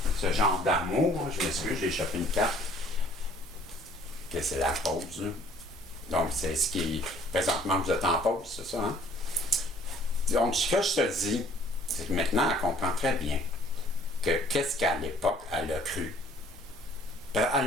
ce genre d'amour. Je m'excuse, j'ai échappé une carte. Que c'est la pause. Là. Donc, c'est ce qui... Présentement, vous êtes en pause, c'est ça, hein? Donc, ce que je te dis, c'est que maintenant, elle comprend très bien que qu'est-ce qu'à l'époque, elle a cru. Elle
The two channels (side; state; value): both; normal; correlation 0.57